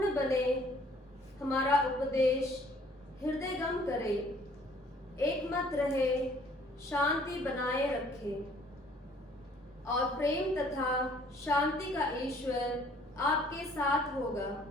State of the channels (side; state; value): both; normal; correlation 0.58